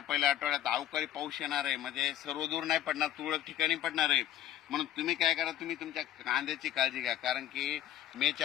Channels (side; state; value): right; quieter; 12.2 dB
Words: अवकाळी पाऊस येणार आहे. म्हणजे सर्वदूर नाही पडणार, तुरळक ठिकाणी पडणार आहे. म्हणून तुम्ही काय करा, तुम्ही तुमच्या कांद्याची काळजी घ्या, कारण की